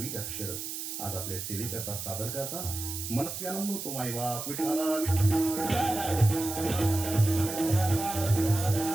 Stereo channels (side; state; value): right; noise; hiss, 6 dB below the sound